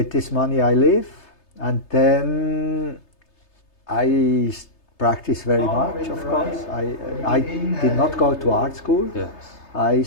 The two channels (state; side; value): late; right; 3.3 ms